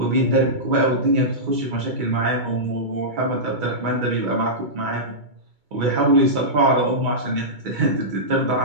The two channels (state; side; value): late; left; 2.2 ms